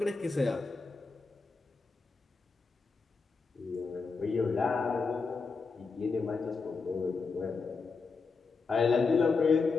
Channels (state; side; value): quieter; right; 4.5 dB